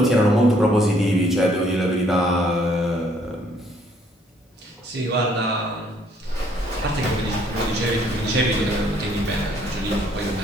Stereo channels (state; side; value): normal; both; correlation 0.65